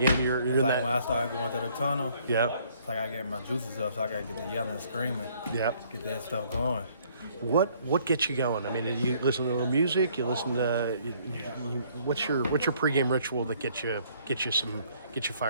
you're It's in like that? when I start going to the tunnel, Yeah, it's like I get my juices up, so I gotta get the yelling and screaming, yeah. get that stuff going. What gets you going? I mean, you listen to a little music. You listen to what's your pregame ritual that gets you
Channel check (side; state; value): both; inverted; correlation -0.63